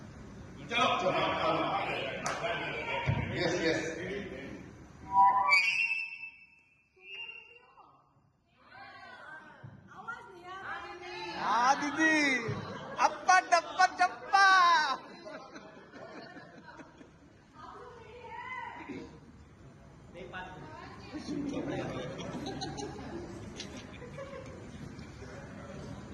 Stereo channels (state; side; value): identical; both; correlation 1.00